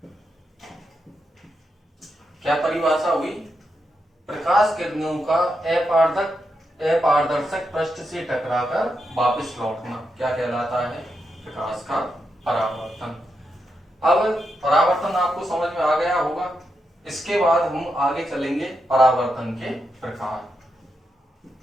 क्या परिभाषा हुई, प्रकाश किरणों का अपारदर्शक पृष्ठ से टकराकर वापस लौटना क्या कहलाता है, प्रकाश का परावर्तन। अब परावर्तन आपको समझ में आ गया होगा। इसके बाद हम आगे चलेंगे परावर्तन के प्रकार।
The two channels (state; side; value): normal; both; correlation 0.85